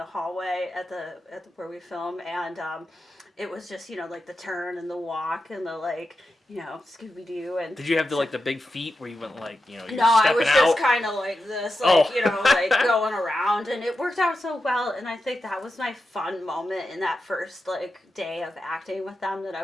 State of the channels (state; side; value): normal; both; correlation 0.89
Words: hallway at the where we film, and it was just like the turn and the walk and the like Scooby Doo and. Did you have the big feet where you went you're No, I stepping was out? just kind of like this, like going around, and it worked out so well. And I think that was my fun moment in that first day of acting with them. That I